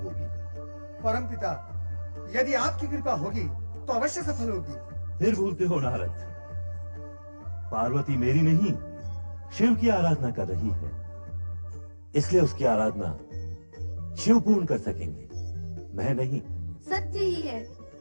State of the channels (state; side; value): inverted; both; correlation -1.00